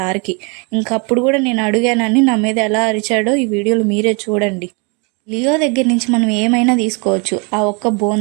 ఇంకప్పుడు కూడా నేను అడిగానని నా మీద ఎలా అరిచాడో ఈ వీడియోలో మీరే చూడండి. లియో దగ్గర నుంచి మనం ఏమైనా తీసుకోవచ్చు. ఆ ఒక్క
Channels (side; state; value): left; quieter; 32.5 dB